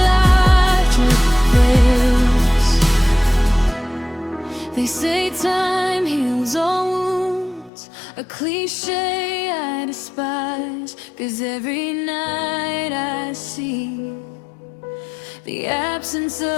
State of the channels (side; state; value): right; drops out; at 7.7 s